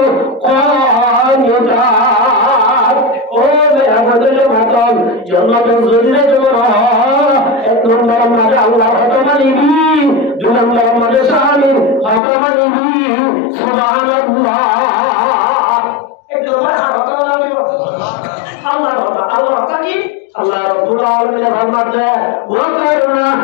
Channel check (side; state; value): right; drops out; at 12.2 s